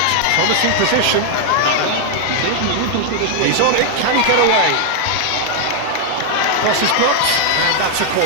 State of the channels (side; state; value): both; different; correlation 0.00